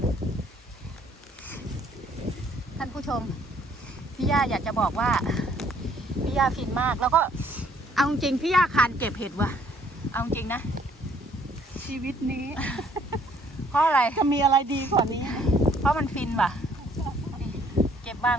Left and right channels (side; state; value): both; normal; correlation 0.63